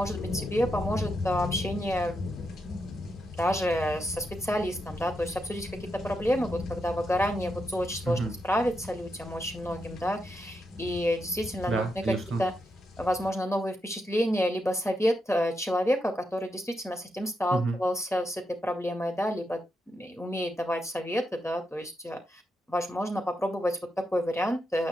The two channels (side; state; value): both; normal; correlation 0.83